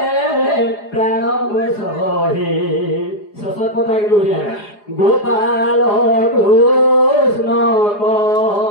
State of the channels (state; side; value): late; right; 4.9 ms